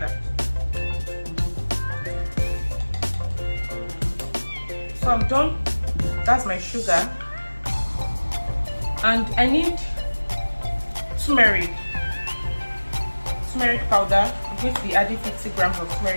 So I'm done. That's my sugar, and I need turmeric powder. I'm going to be adding 50 grams of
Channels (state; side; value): inverted; both; correlation -1.00